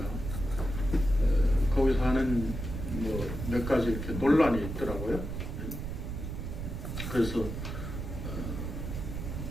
거기서 하는 뭐 몇 가지 이렇게 논란이 있더라고요. 그래서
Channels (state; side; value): noise; right; rumble, 5 dB below the sound